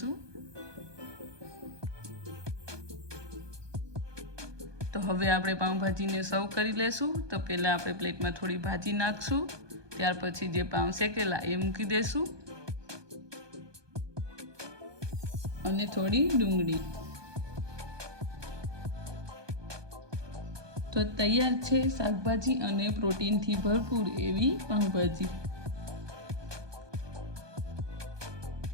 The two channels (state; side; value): late; left; 1.2 ms